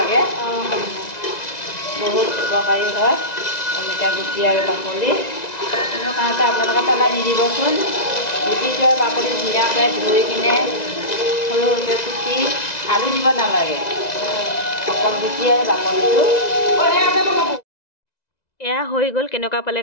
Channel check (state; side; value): late; right; 2.0 ms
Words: বহুত উপকাৰী হয় অমিতা গুটি আৰু বাকলি। কোনো কাৰণতে আপোনালোকে পেলাই নিদিবচোন। গুটিটো আৰু বাকলি ধুনীয়াকৈ ধুই কিনে সৰু সৰুকৈ কুটি, আলু দিব নালাগে, অকল গুটি আৰু বাকলিটো। এয়া হৈ গ'ল। কেনেকুৱা পালে